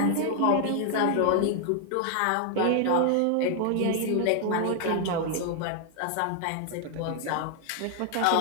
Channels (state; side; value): different; both; correlation 0.00